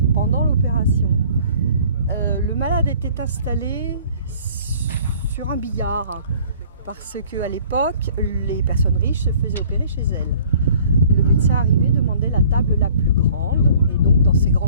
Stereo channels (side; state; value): both; inverted; correlation -0.53